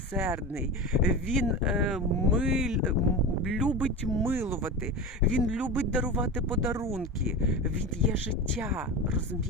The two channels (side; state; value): both; normal; correlation 0.26